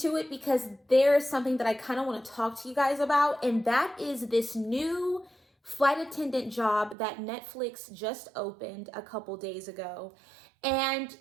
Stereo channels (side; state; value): left; drops out; at 7.0 s